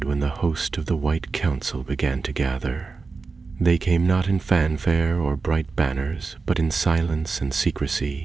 when the host of the White Council began to gather. They came not in fanfare or bright banners, but in silence and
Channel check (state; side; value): quieter; left; 4.4 dB